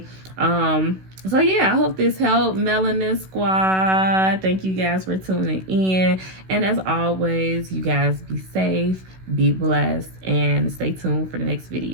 So yeah, I hope this helped, Melanin Squad. Thank you guys for tuning in. And as always, you guys be safe, be blessed, and stay tuned for the next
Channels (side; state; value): left; late; 16 ms